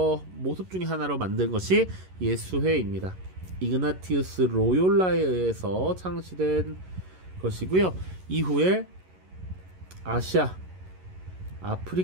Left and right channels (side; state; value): left; late; 11 ms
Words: 모습 중에 하나로 만든 것이 예수회입니다. 이그나티우스 로욜라에 의해서 창시된 것이고요. 이후에 아시아,